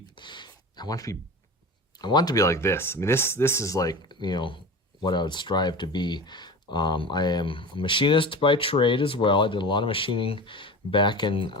I want it to be like this. I mean, this is like, you know, what I would strive to be. I am a machinist by trade as well. I did a lot of machining back in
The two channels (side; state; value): both; normal; correlation 0.31